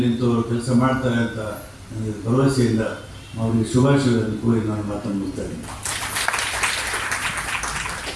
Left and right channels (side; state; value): both; identical; correlation 1.00